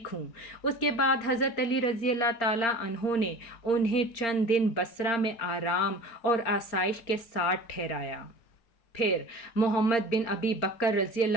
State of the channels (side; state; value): right; late; 4.4 ms